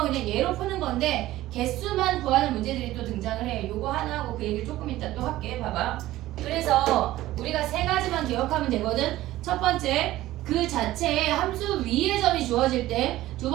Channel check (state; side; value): quieter; left; 15.8 dB